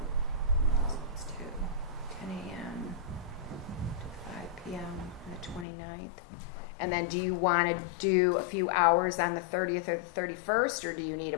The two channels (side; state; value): right; drops out; at 5.7 s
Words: So let's do 10 a.m. to 5 p.m. on the 29th. And then do you want to do a few hours on the 30th or the 31st, or do you need a